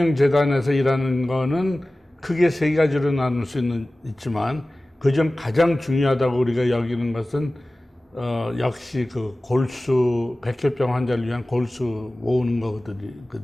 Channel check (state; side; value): normal; both; correlation 0.97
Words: 일하는 거는 크게 세 가지로 나눌 수 있지만 그중 가장 중요하다고 우리가 여기는 것은 역시 그 골수, 백혈병 환자를 위한 골수 모으는